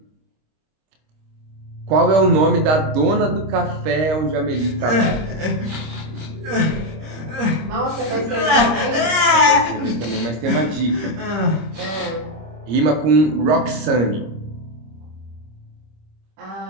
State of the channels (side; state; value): left; late; 26 ms